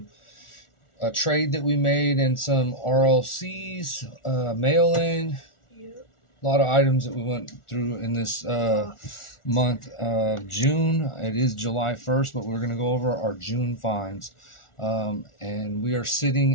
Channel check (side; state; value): right; late; 1.4 ms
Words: trade that we made and some RLCs, mail-in. A lot of items that we went through in this month of June. It is July 1st, but we're going to go over our June finds. And we are